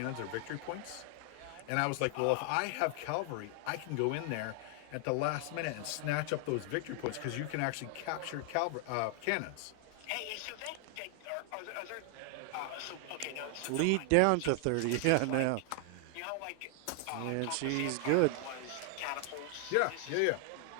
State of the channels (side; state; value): both; different; correlation 0.00